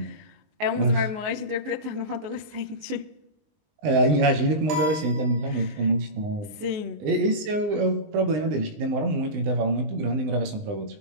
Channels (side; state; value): left; late; 20 ms